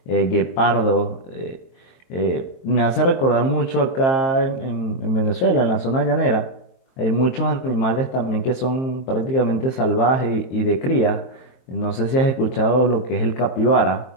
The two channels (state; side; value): late; right; 23 ms